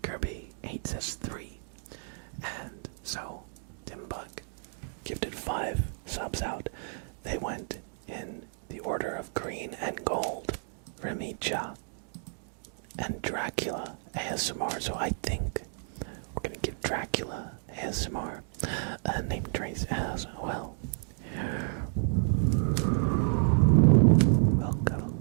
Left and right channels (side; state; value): left; silent; digital silence